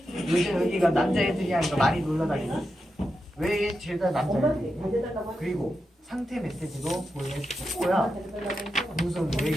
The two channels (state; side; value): normal; both; correlation 0.88